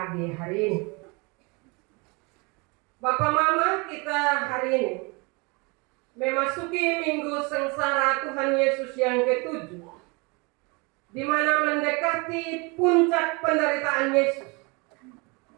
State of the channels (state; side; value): quieter; left; 28.8 dB